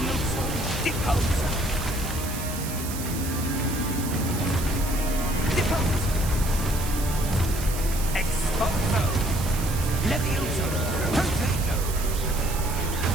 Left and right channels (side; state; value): right; noise; hiss, 9 dB below the sound